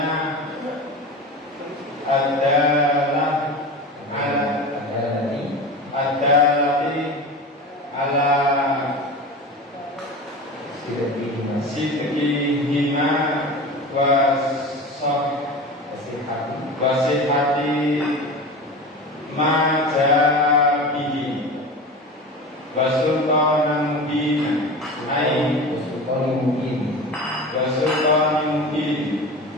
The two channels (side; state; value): both; normal; correlation 0.31